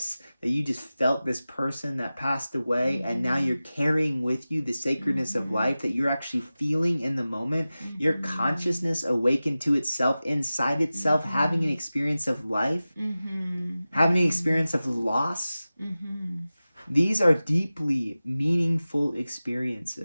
that you just felt this person that passed away, and now you're carrying with you the sacredness of life that you're actually feeling in the moment. Your consciousness awakened to itself, inside itself, having an experience of life, having an experience of loss. These are deeply meaningful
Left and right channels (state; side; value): inverted; both; correlation -0.96